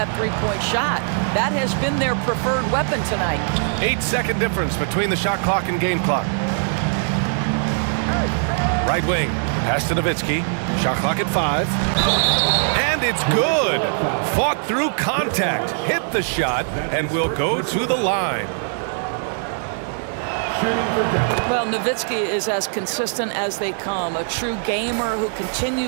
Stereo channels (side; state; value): left; silent; 58 dB below the other